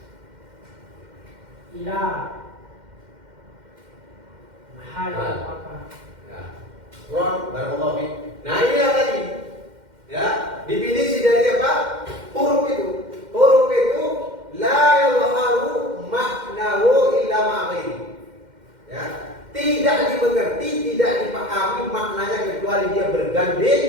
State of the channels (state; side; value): late; left; 2.1 ms